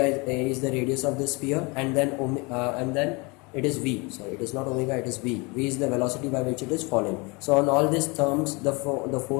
is the radius of the sphere, and then it is V. Sorry, it is not omega, it is V. V is the velocity by which it is falling. So on all these terms, the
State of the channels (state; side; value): quieter; right; 27.9 dB